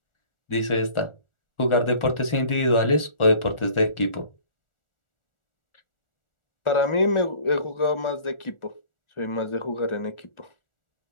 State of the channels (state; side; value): late; right; 1.4 ms